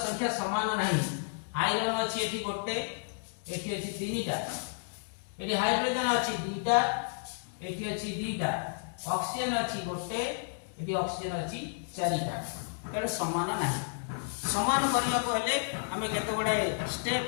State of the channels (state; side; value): silent; right; digital silence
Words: संख्या समान नहीं आयरन अछि एठी गोटे एठी अछि तीनटा एठी हाइड्रोजन अछि दुईटा एठी अछि दुईटा ऑक्सीजन अछि गोटे एठी ऑक्सीजन अछि चारिटा तेणु समान नाही समान करिया को हेले हमें केते बडे स्टेप